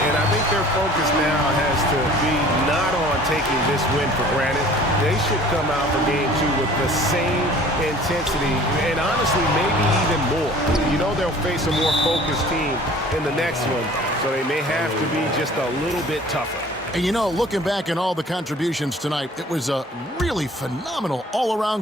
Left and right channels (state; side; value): normal; both; correlation 0.49